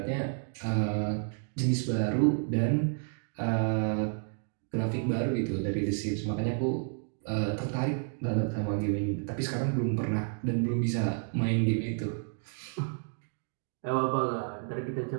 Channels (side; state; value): left; silent; 57 dB below the other